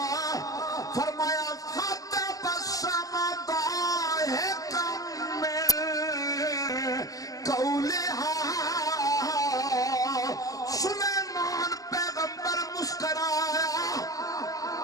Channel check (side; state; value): right; late; 0.17 ms